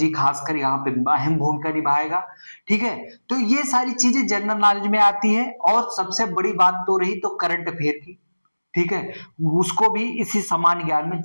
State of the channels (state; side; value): inverted; both; correlation -1.00